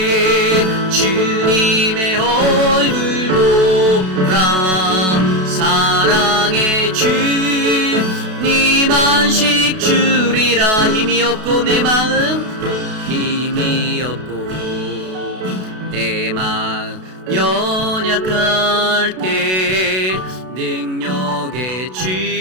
주님의 얼굴 보라. 사랑의 주님 안식 주리라. 힘이 없고 내 마음 힘이 없고 내 마음 연약할 때 능력의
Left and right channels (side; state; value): left; late; 32 ms